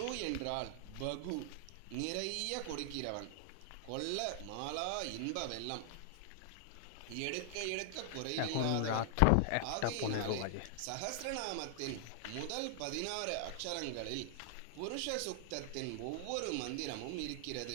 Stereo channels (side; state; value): both; different; correlation 0.00